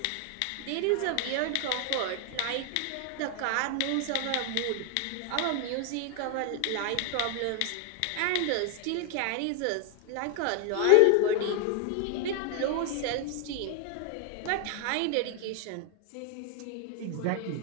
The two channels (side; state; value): both; different; correlation 0.00